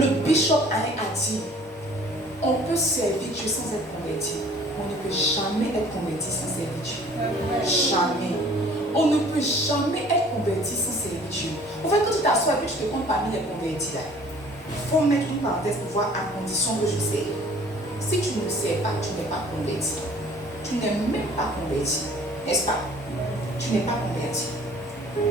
bishop Alain a dit, on peut servir Dieu sans être converti. On ne peut jamais être converti sans servir Dieu. Jamais. On ne peut jamais être converti sans servir Dieu. En fait, quand tu t'assois et que tu te comptes parmi les convertis là, il faut mettre une parenthèse pour voir à condition que je sais. Si tu ne sais pas, tu n'es pas converti. Tu n'es même pas converti. N'est-ce pas? Tu n'es pas converti.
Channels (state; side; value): normal; both; correlation 0.52